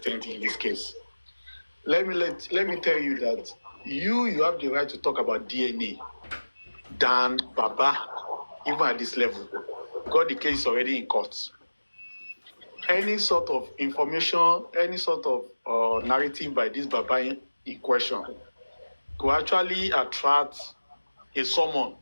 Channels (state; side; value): inverted; both; correlation -1.00